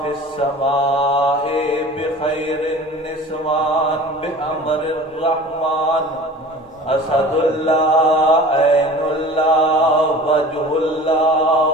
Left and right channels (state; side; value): normal; both; correlation 0.41